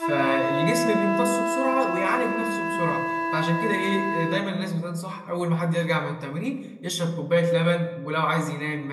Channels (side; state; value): both; identical; correlation 1.00